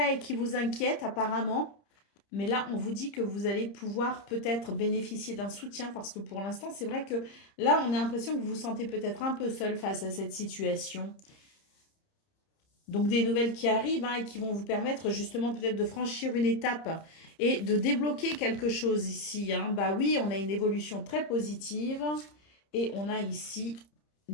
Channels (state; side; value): late; right; 30 ms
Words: et qui vous inquiète apparemment. Mais là, on vous dit que vous allez pouvoir peut-être bénéficier d'un soutien parce que pour l'instant, c'est vrai que là, on a l'impression que vous vous sentez peut-être un peu seul face à cette situation. Donc des nouvelles qui arrivent, hein, et qui vont vous permettre justement peut-être de franchir une étape et de débloquer quelque chose ici, hein. Bah oui, on a une évolution très positive et on a ici